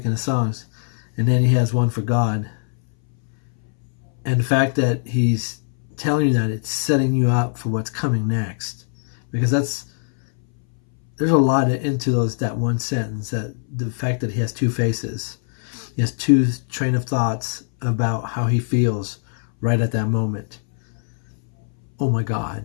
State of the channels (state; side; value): silent; right; 62 dB below the other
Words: and his songs. And then he has one for God. And the fact that he's telling you that, it's setting you up for what's coming next. Because there's a lot into that one sentence, that the fact that he has two faces. He has two train of thoughts about how he feels right at that moment. Oh my God.